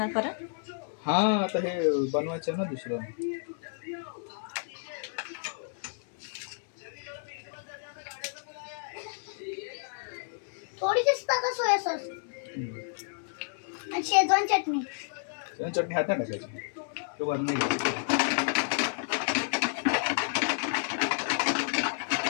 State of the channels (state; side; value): silent; right; digital silence